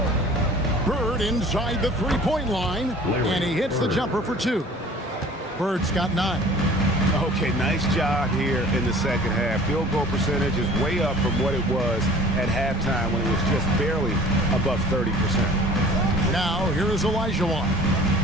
Bird inside the three-point line, and he hits the jumper for 2. Bird's got 9. Okay, nice job here in the second half. Field goal percentage is way up from what it was at halftime when it was just barely above 30%. Now, here is Olajuwon.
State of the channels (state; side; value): normal; both; correlation 0.47